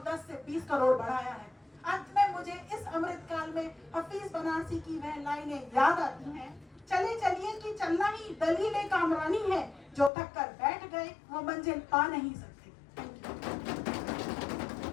10 से 20 करोड़ बढ़ाया है। अंत में मुझे इस अमृत काल में हफीज बनारसी की वह लाइनें याद आती हैं, चले चलिए कि चलना ही दलील कामरानी है, जो थक कर बैठ गए वो मंजिल पा नहीं सकते।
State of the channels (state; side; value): drops out; right; at 10.1 s